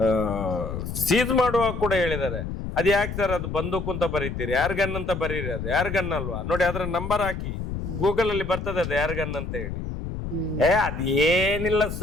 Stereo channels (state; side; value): noise; left; rumble, 6 dB below the sound